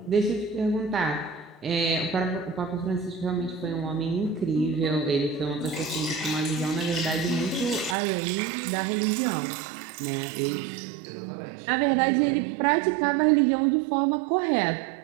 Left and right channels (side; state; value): left; drops out; at 8.0 s